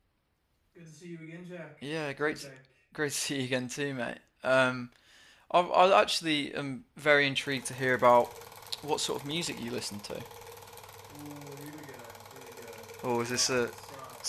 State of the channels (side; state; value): both; identical; correlation 1.00